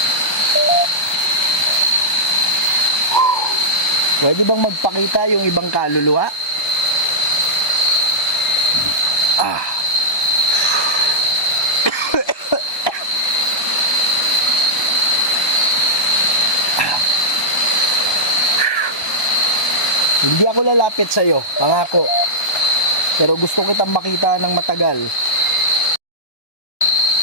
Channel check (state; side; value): late; right; 1.3 ms